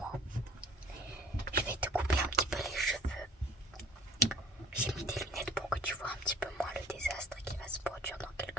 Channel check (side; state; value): both; normal; correlation 0.49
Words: Je vais te couper un petit peu les cheveux. J'ai mis des lunettes pour que tu vois un petit peu moins le désastre qui va se produire dans